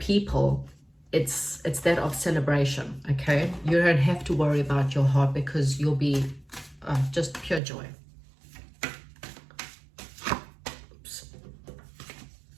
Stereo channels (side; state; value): left; drops out; at 7.6 s